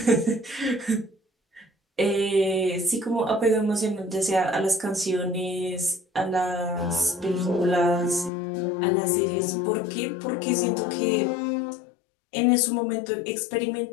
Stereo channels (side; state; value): right; drops out; at 8.3 s